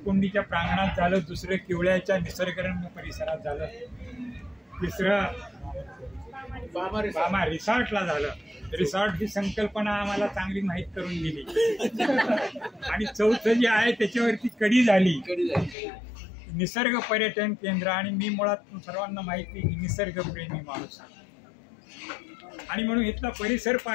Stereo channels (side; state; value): right; drops out; at 15.8 s